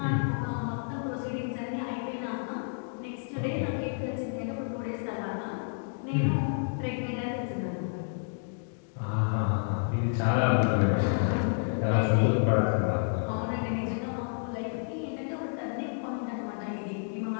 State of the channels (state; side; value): silent; right; digital silence